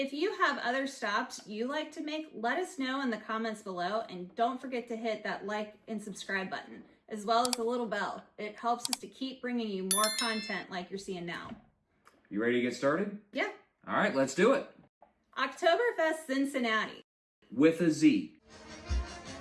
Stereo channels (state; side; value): identical; both; correlation 1.00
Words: you have other stops you like to make, let us know in the comments below, and don't forget to hit that like and subscribe button, as well as the little bell. It helps us to keep bringing you more content like you're seeing now. You ready to get started? Yeah. All right, let's do it. Oktoberfest Zinzinnati. With a Z.